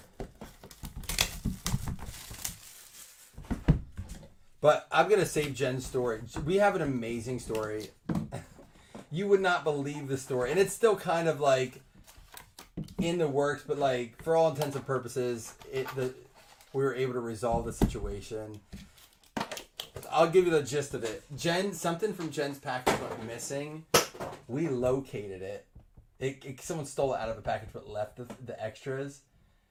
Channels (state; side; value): identical; both; correlation 1.00